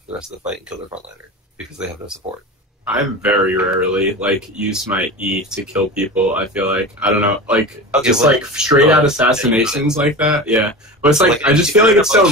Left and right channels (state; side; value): normal; both; correlation 0.29